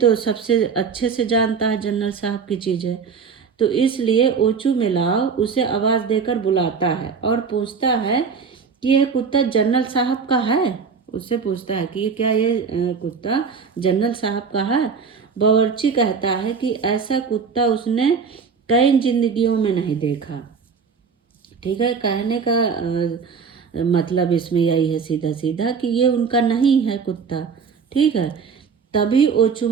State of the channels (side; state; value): left; quieter; 5.8 dB